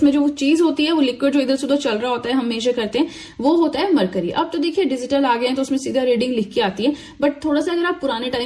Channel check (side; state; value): both; identical; correlation 1.00